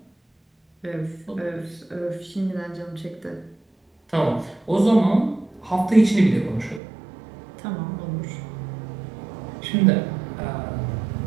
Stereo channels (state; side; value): drops out; left; at 6.8 s